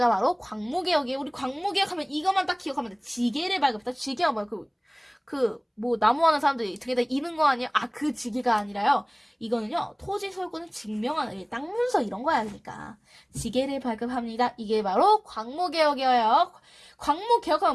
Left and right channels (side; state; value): both; identical; correlation 1.00